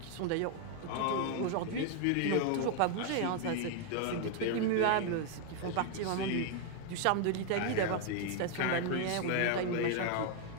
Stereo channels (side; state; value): both; different; correlation 0.00